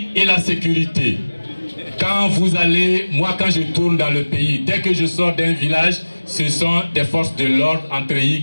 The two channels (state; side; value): inverted; both; correlation -1.00